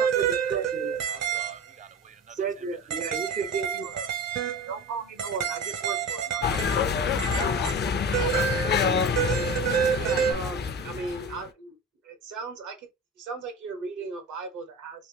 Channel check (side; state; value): both; normal; correlation 0.29